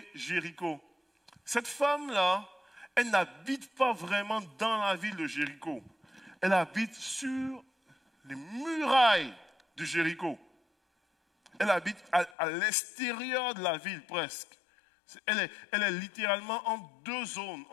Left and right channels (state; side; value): drops out; right; at 12.4 s